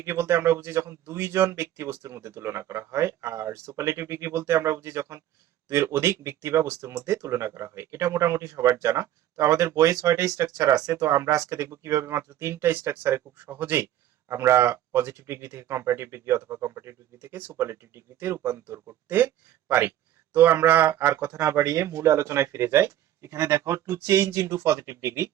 বলতে আমরা বুঝি যখন দুইজন ব্যক্তি বস্তুর মধ্যে তুলনা করা হয়, আর সুপারলেটিভ ডিগ্রি বলতে আমরা বুঝি যখন দুইয়ের অধিক ব্যক্তি বা বস্তুর মধ্যে তুলনা করা হয়। এটা মোটামুটি সবার জানা। তো আমাদের বইয়ে 6টা স্ট্রাকচার আছে, তো আমরা আজকে দেখবো কিভাবে মাত্র 3টা স্ট্রাকচারে খুব সহজেই আমরা পজিটিভ ডিগ্রি থেকে কম্পারেটিভ ডিগ্রি অথবা কম্পারেটিভ ডিগ্রি থেকে সুপারলেটিভ ডিগ্রিতে রূপান্তর করতে পারি। তো আমরা আর কথা না বাড়িয়ে মূল আলোচনায় ফিরে যাই। এখানে দেখো, to change into positive degree,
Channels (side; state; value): left; quieter; 12.3 dB